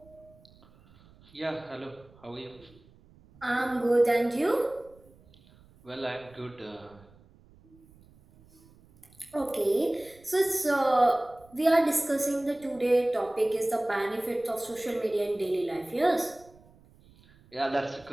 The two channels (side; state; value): right; noise; rumble, 27 dB below the sound